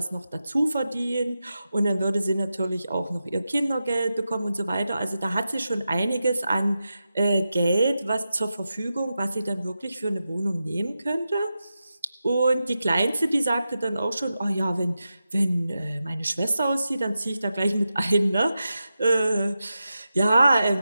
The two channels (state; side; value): inverted; both; correlation -0.91